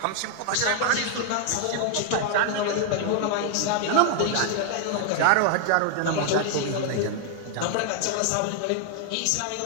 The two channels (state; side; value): different; both; correlation 0.00